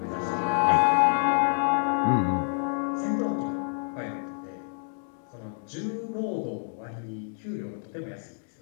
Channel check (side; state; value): right; silent; digital silence